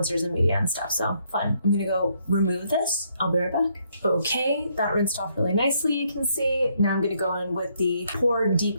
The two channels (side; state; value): both; inverted; correlation -0.72